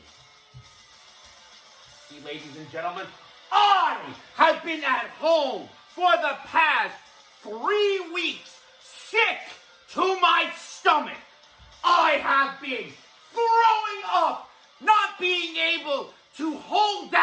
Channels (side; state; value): both; identical; correlation 1.00